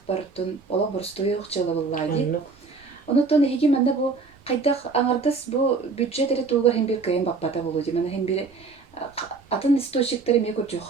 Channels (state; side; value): quieter; left; 4.3 dB